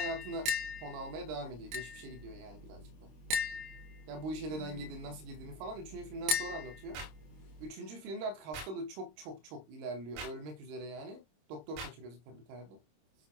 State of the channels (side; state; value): left; late; 26 ms